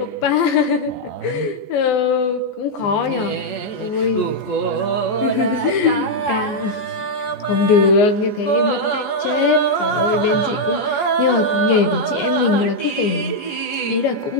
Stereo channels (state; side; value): late; right; 14 ms